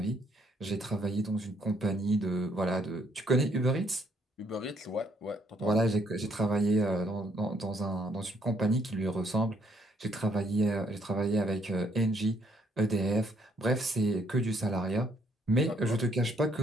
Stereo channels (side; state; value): both; normal; correlation 0.68